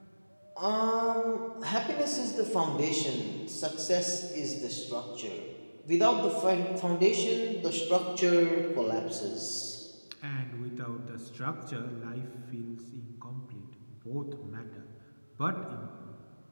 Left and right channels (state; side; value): inverted; both; correlation -1.00